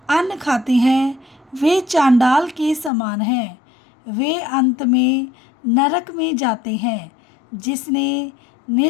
अन्न खाते हैं वे चांडाल के समान हैं, वे अंत में नरक में जाते हैं। जिसने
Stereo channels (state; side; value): drops out; right; at 2.9 s